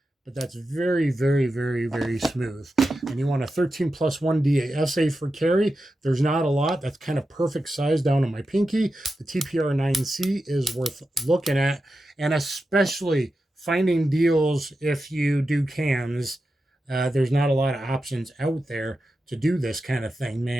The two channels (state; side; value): normal; both; correlation 0.90